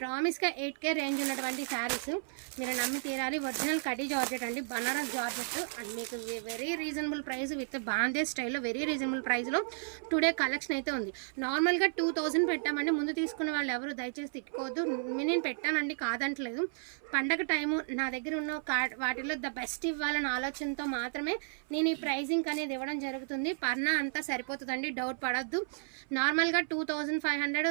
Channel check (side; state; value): left; silent; 56 dB below the other